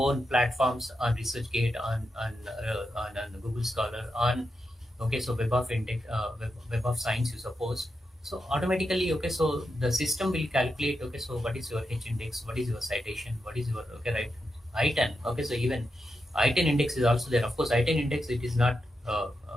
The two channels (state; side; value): normal; both; correlation 0.87